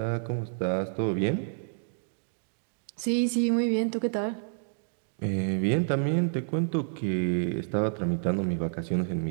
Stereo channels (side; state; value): left; silent; digital silence